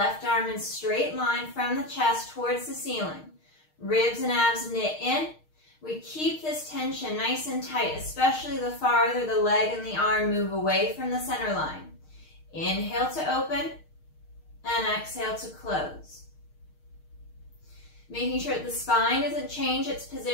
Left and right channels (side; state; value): right; late; 6.5 ms